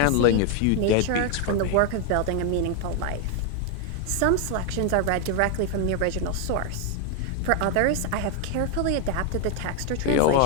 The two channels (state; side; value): different; both; correlation 0.01